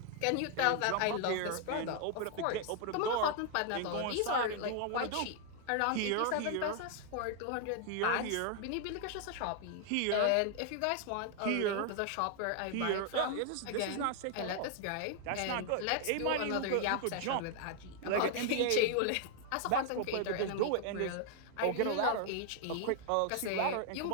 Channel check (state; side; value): different; both; correlation 0.00